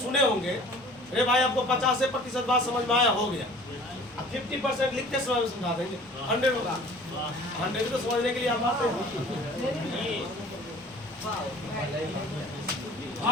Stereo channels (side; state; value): both; normal; correlation 0.48